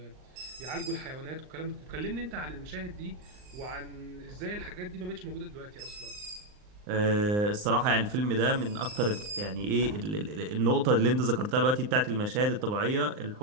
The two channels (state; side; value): late; left; 39 ms